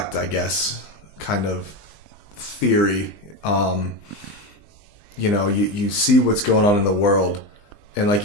I guess, kind of theory. You see what's going on in the world, and like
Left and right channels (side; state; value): right; late; 20 ms